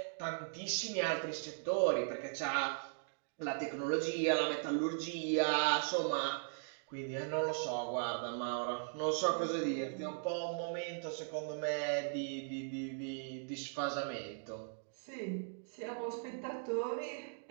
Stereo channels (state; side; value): silent; left; digital silence